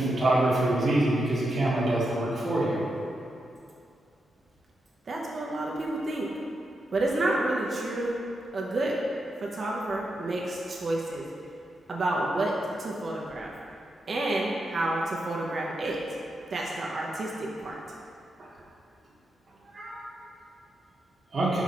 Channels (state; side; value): normal; both; correlation 0.85